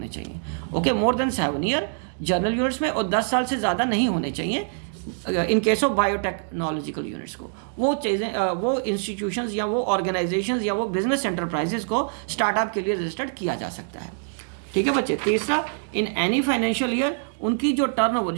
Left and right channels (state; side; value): silent; left; digital silence